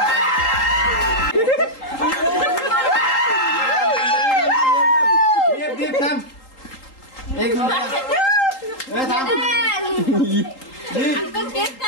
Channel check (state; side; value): late; right; 3.8 ms